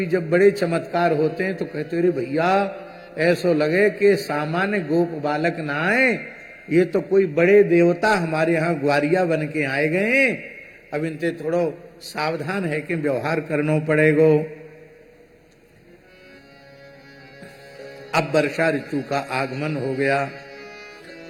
जब बड़े चमत्कार होते हैं तो कहते अरे भैया ऐसो लगे कि सामान्य गोप बालक ना आए, ये तो कोई बड़े देवता हमारे यहाँ ग्वारिया बन के आए गए। अब इनसे थोड़ो सावधान है कि व्यवहार करना पड़ेगो। अब वर्षा ऋतु का आगमन हो गया।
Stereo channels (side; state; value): both; identical; correlation 1.00